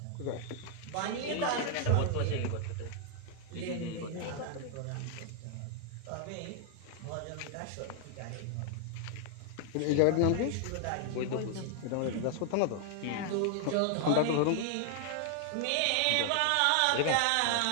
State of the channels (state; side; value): different; both; correlation 0.00